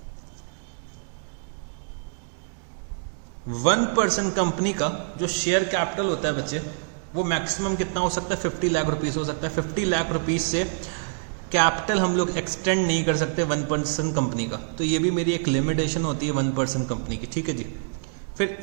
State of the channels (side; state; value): left; silent; digital silence